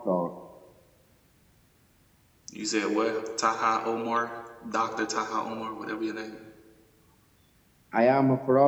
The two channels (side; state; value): both; identical; correlation 1.00